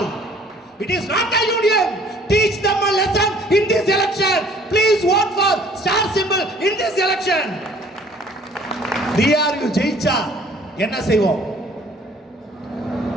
It is not a union. teach them a lesson in this election. Please vote for star symbol in this election. DRU ஜெயிச்சா என்ன செய்வோம்?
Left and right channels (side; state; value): both; normal; correlation 0.55